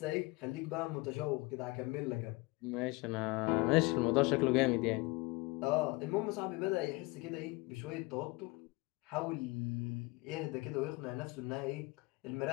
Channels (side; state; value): right; quieter; 24.9 dB